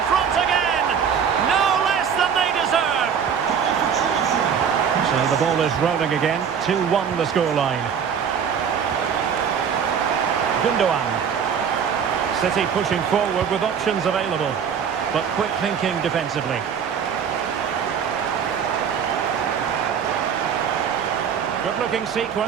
front again. No less than they deserve. So the ball is rolling again. 2-1 the scoreline. Gundogan. City pushing forward with options available, but quick thinking defensively. Good looking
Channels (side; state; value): left; quieter; 7.3 dB